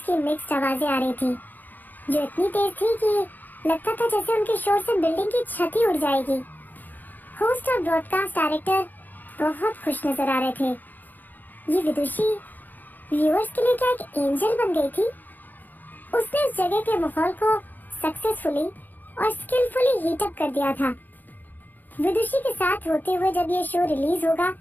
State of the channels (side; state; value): right; late; 0.086 ms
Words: की मिक्स्ड आवाजें आ रही थी जो इतनी तेज थी कि लगता था जैसे उनके शोर से बिल्डिंग की छत ही उड़ जाएगी। होस्ट और ब्रॉडकास्ट डायरेक्टर बहुत खुश नजर आ रहे थे। ये विदुषी व्यूअर्स के लिए क्या एक एंजल बन गई थी? उसने उस जगह के माहौल को सक्सेसफुली और स्किलफुली हीट अप कर दिया था। विदुषी के साथ होते हुए जब ये शो रिलीज होगा